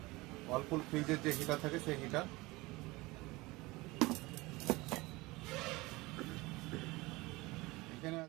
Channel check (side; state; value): left; quieter; 22.0 dB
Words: ওয়ালপুল ফ্রিজের যে হিটার থাকে সেই হিটার। এখানে